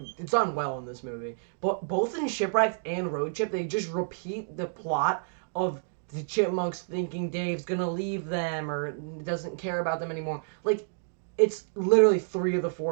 done well in this movie. But both in Shipwrecked and Road Trip, they just repeat the plot of the Chipmunks thinking Dave's gonna leave them or doesn't care about them anymore. Like, it's literally 3 of the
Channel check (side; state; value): left; silent; digital silence